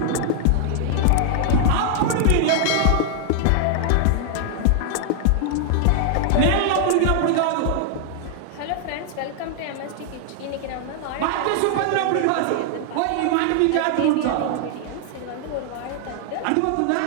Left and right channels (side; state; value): both; different; correlation 0.00